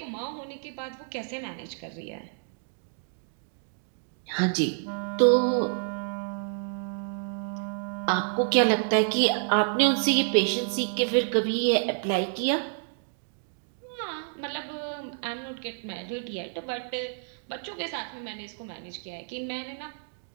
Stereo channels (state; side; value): silent; left; 59 dB below the other